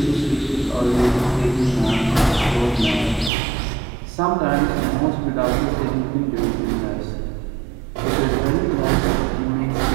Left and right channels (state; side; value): drops out; left; at 3.3 s